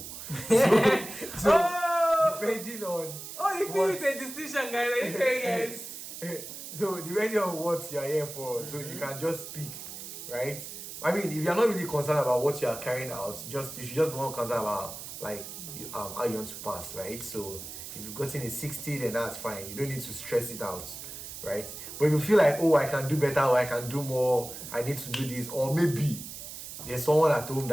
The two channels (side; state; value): right; noise; hiss, 10 dB below the sound